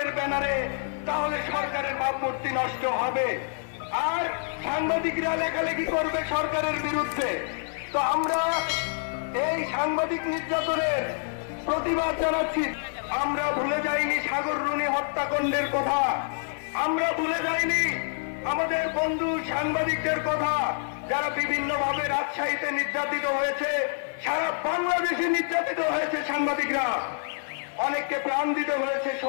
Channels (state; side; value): silent; right; 56 dB below the other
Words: ব্যানারে, তাহলে সরকারের ভাবমূর্তি নষ্ট হবে আর সাংবাদিকরা লেখালেখি করবে সরকারের বিরুদ্ধে। তো আমরা এই সাংবাদিক নির্যাতনের প্রতিবাদ জানাচ্ছি। আমরা ভুলে যাইনি সাগর রুনি হত্যাকাণ্ডের কথা, আমরা ভুলে যাইনি আমাদের বন্ধু সাংবাদিকদের কথা যারা বিভিন্নভাবে রাজশাহীতে নির্যাতিত হয়েছে, সারা বাংলাদেশে নির্যাতিত হয়েছে সাংবাদিকরা। অনেককে প্রাণ দিতে হয়েছে